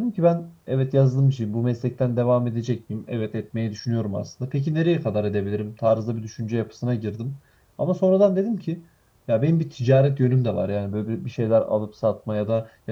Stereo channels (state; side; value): identical; both; correlation 1.00